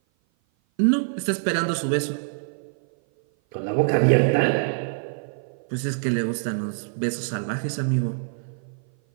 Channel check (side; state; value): left; silent; 56 dB below the other